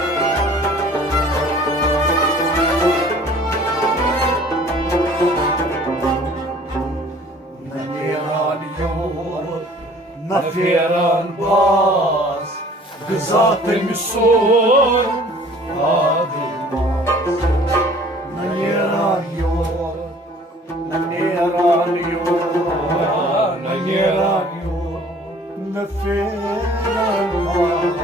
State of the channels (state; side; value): normal; both; correlation 0.52